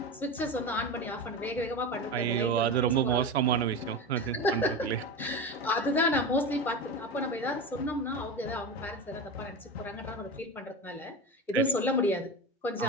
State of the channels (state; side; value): normal; both; correlation 0.23